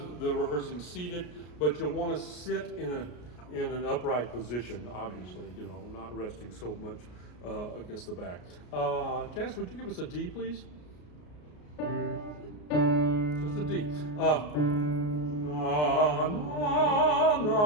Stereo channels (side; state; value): right; late; 33 ms